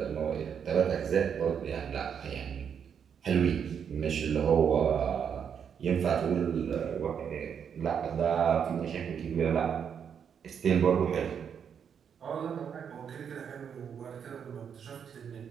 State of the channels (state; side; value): quieter; left; 7.6 dB